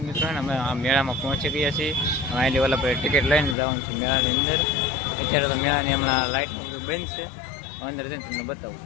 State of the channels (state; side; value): drops out; right; at 3.6 s